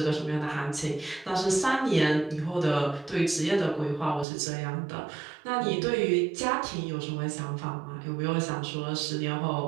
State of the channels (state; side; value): drops out; left; at 4.2 s